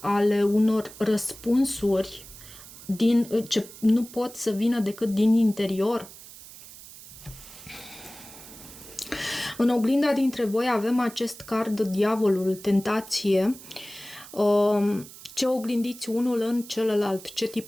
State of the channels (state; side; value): noise; right; hiss, 17 dB below the sound